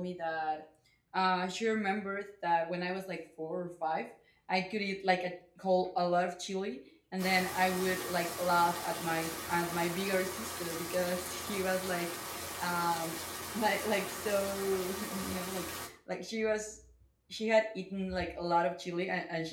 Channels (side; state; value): both; identical; correlation 1.00